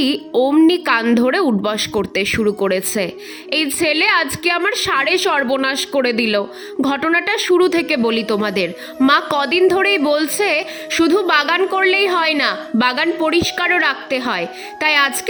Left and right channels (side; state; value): both; identical; correlation 1.00